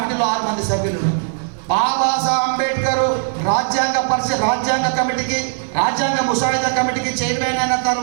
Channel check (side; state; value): left; silent; 56 dB below the other